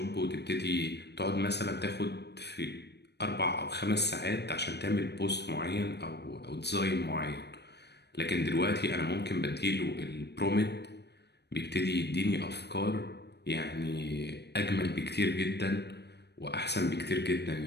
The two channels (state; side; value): late; right; 0.49 ms